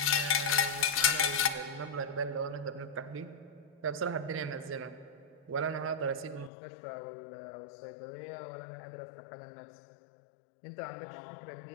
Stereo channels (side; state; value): right; drops out; at 6.5 s